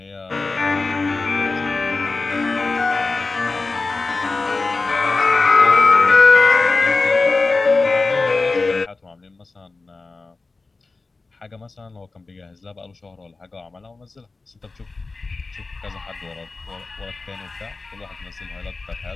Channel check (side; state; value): right; quieter; 3.7 dB